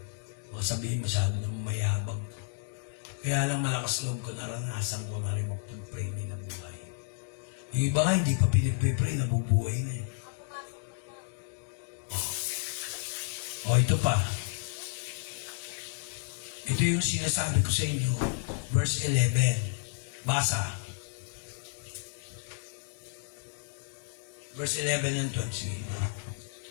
Baka sabihin masyado na mayabang ko. Kaya lang malakas loob ko, naranasan ko na rin mag-pray na buhay. Yung iba nga, hindi pa pinipipray, nabubuhay na eh. Ito pa. Ito yung sinasabi ko sa inyo, verse 11. Basa. Verse 11 and 12. Sige.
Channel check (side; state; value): right; silent; digital silence